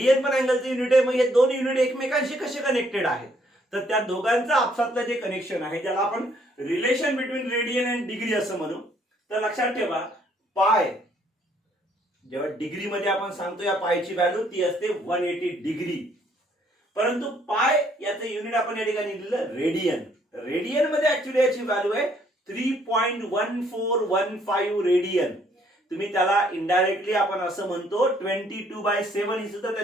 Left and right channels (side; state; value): both; normal; correlation 0.66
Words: पण अँगलचं युनिट आहे. मग हे दोन युनिट एकमेकांशी कसे कनेक्टेड आहेत, तर त्या दोघांचं आपसातलं जे कनेक्शन आहे ज्याला आपण relation between radian and degree असं म्हणू. तर लक्षात ठेवा पाय, जेव्हा डिग्री मध्ये आपण सांगतो या पायची व्हॅल्यू ती असते 180 डिग्री, परंतु पाय याचं युनिट आपण या ठिकाणी लिहिलं रेडियन. रेडियन मध्ये ऍक्च्युली याची व्हॅल्यू आहे 3.1415 रेडियन. तुम्ही त्याला इनडायरेक्टली आपण असं म्हणतो 22/7 ही सुद्धा